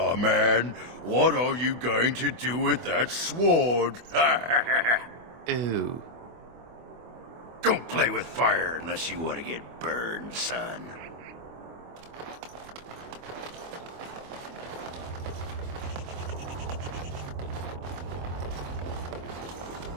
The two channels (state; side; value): late; left; 25 ms